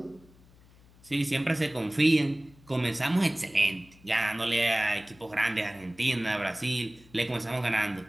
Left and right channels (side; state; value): left; noise; hum, 26 dB below the sound